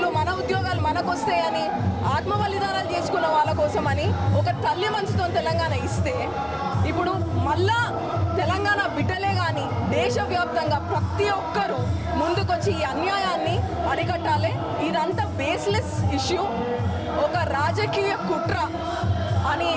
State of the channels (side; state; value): both; identical; correlation 1.00